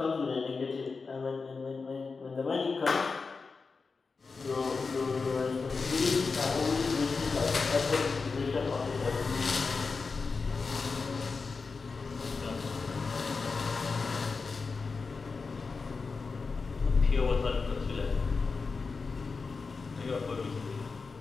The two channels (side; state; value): right; quieter; 4.5 dB